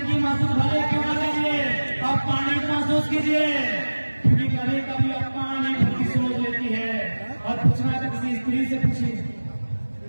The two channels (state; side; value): inverted; both; correlation -1.00